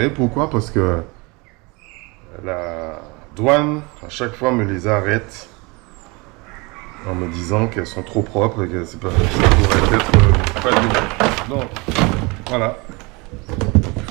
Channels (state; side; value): quieter; left; 27.0 dB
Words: Pourquoi? Parce que la douane, à chaque fois, me les arrête en me disant qu'elles sont trop propres et que c'est pas, ça pourrait être pas du bon. Donc, voilà. Il